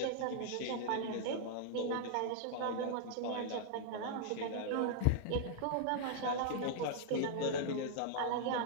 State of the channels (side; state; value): both; different; correlation -0.01